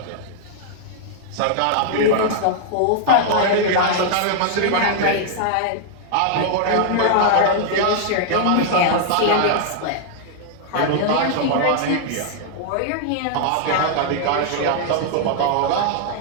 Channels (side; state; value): both; different; correlation -0.01